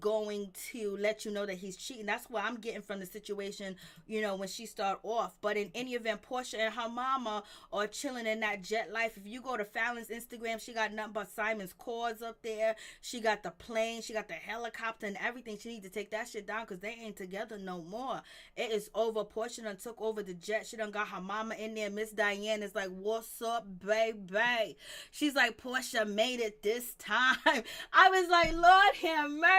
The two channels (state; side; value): identical; both; correlation 1.00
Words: to let you know that he's cheating. That's what I'm getting from the situation, when she start off. But in any event, Portia and her mama are chilling in that jet life. If you go to Fallon's Instagram, she got nothing but got Simon's cause up there. She got the plane. She got the helicopter and everything. She need to take that shit down because they ain't together no more. It is over. Portia done took over the jet. She done got her mama in there. Miss Diane is like, what's up, baby? She's like, Portia made it this time. I was like, Lord have